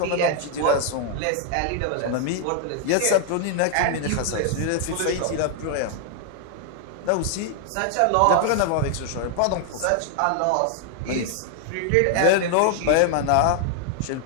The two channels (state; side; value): different; both; correlation 0.00